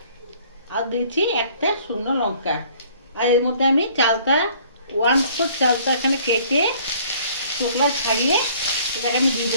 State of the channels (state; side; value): inverted; both; correlation -0.57